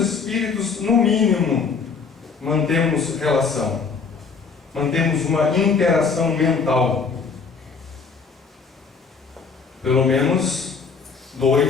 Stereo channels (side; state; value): right; quieter; 5.2 dB